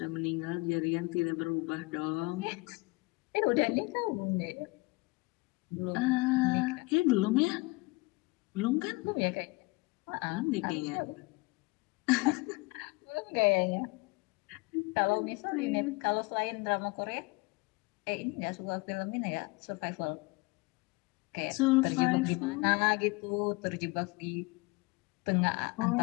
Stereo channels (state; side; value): quieter; right; 25.2 dB